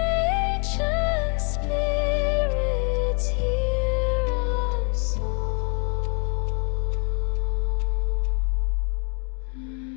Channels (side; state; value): right; quieter; 38.6 dB